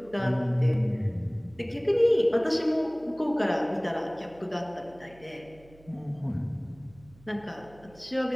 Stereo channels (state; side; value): noise; right; hum, 25 dB below the sound